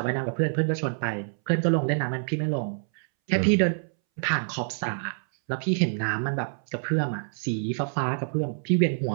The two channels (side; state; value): left; silent; 60 dB below the other